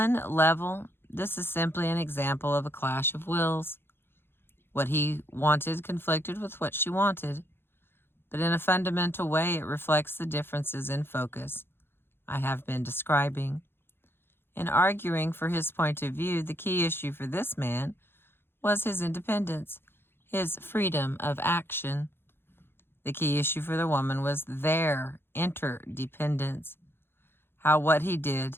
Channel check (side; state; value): right; late; 0.11 ms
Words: level, this is simply an example of a clash of wills. What he wanted conflicted with what she wanted, but in a fundamental way it reflects the differences in focus I have been describing. In arguing for his point of view, the key issue for this man was his independence, his freedom of action. The key issue for the woman was their interdependence, how what he